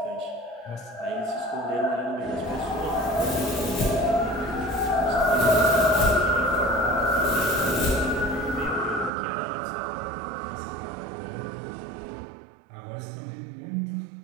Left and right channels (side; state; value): left; drops out; at 9.1 s